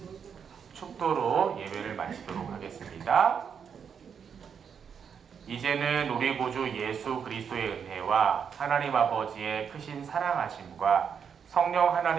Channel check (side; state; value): left; quieter; 7.1 dB